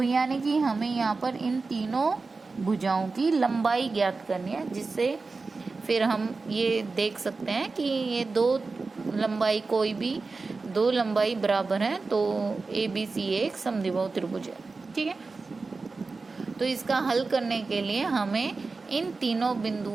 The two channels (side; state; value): left; quieter; 4.0 dB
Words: यानी कि हमें यहाँ पर इन तीनों भुजाओं की लंबाई ज्ञात करनी है, जिससे फिर हम ये देख सकते हैं कि ये 2 लंबाई कोई भी 2 लंबाई बराबर है तो ABC एक समद्विबाहु त्रिभुज है, ठीक है। तो इसका हल करने के लिए हमें इन तीनों